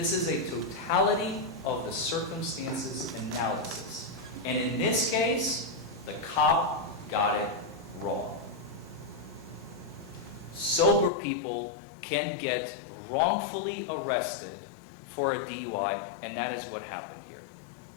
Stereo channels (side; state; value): right; drops out; at 11.1 s